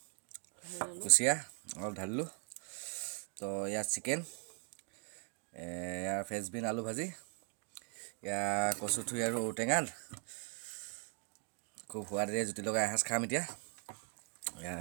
কুচিয়া অলপ ঢালিলোঁ তো ইয়াত চিকেন ইয়াৰ ফ্ৰেঞ্চবিন আলু ভাজি ইয়াৰ কচুথুৰি আৰু ঔটেঙাত খুব সোৱাদেৰে জুতি লগাই এসাঁজ খাম এতিয়া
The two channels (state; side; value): quieter; left; 36.8 dB